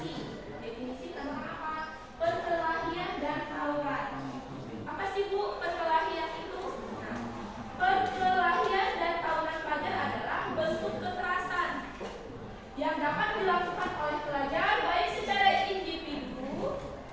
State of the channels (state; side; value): identical; both; correlation 1.00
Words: Definisi tentang apa? Perkelahian dan tawuran. Apa sih Bu perkelahian itu? Nah, perkelahian dan tawuran pelajar adalah bentuk kekerasan yang dapat dilakukan oleh pelajar baik secara individu